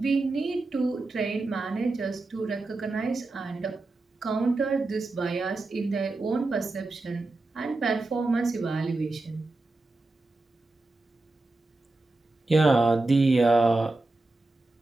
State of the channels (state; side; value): quieter; left; 3.1 dB